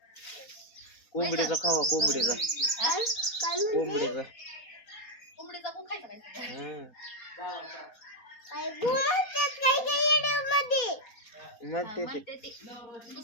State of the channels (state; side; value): late; right; 4.2 ms